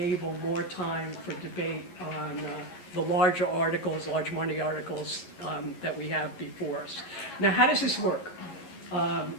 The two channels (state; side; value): late; right; 11 ms